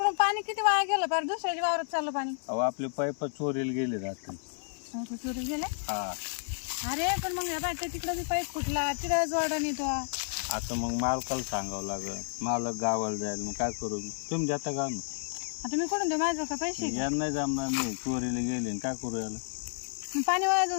पाणी किती वाया गेलं पार दुसऱ्याच्या वावरात चाललं पाणी. अहो आपले पाईप चोरीला गेले रात्री. चोरी गेले. हा अरे पण मग बाय तिकडं बी पाईप फुटला तिकडं जोडा नेतो. आता मग मालकाला सांगावं लागल, मालक गावाला जाईल, मग काय करू मी? तुम्ही जाता का ना? आता मी कुठून देऊ माझं का पैसे? यांना नाही जमणार, नाही चोरीला गेले आणि काय करू याला? मग पाणी वाया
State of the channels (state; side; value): silent; right; 56 dB below the other